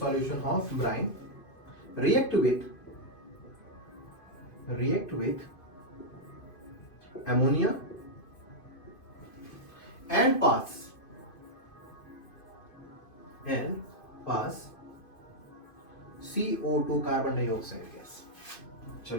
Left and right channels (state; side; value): late; right; 2.5 ms